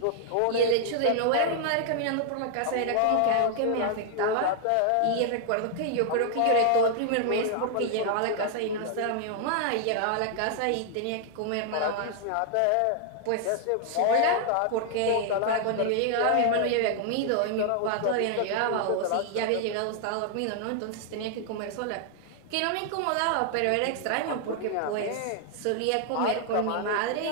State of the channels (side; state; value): both; different; correlation 0.00